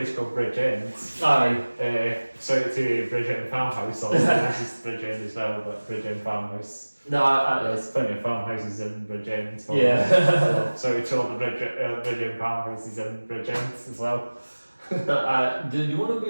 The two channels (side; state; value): both; inverted; correlation -1.00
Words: called Bridgend. Shout out to Bridgend Farmhouse. This is Bridgend as well, but Bridgend Farmhouse. There's plenty of farmhouses in Bridgend. So we told the Bridgend farmhouses in Bridgend as well.